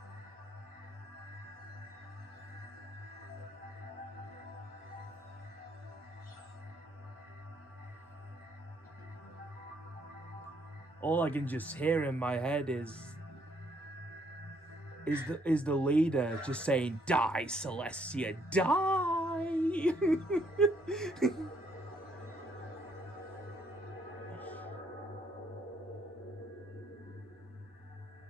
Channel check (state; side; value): normal; both; correlation 0.69